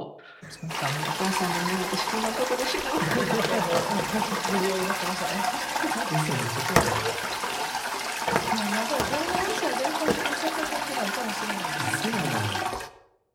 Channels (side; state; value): both; identical; correlation 1.00